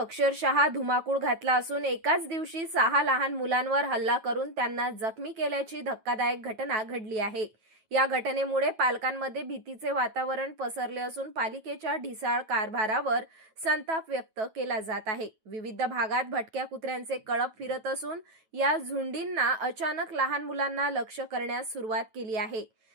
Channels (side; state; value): left; late; 9.2 ms